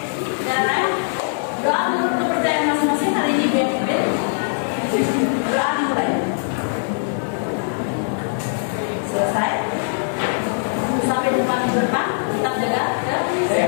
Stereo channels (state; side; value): silent; right; digital silence